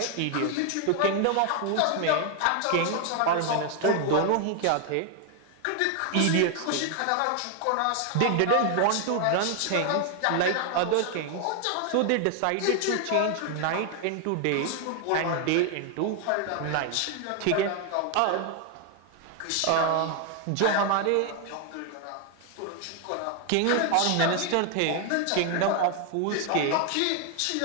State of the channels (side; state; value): both; different; correlation 0.00